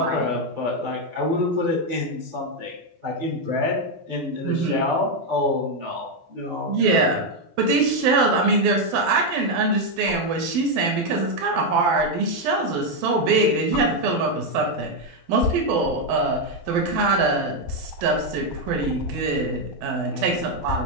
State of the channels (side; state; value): left; late; 12 ms